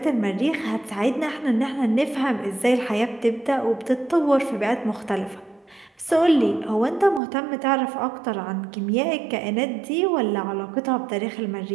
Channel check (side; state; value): left; drops out; at 7.2 s